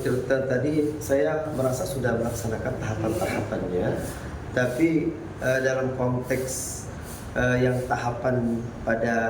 tirta tadi, saya merasa sudah melaksanakan tahapan-tahapannya, tapi dalam konteks yang tahapan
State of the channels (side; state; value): both; identical; correlation 1.00